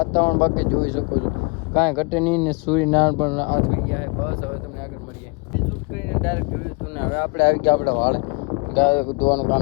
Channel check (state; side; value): quieter; right; 30.2 dB